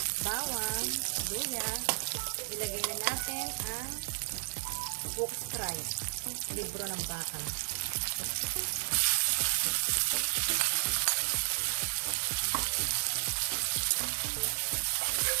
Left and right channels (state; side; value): silent; left; 56 dB below the other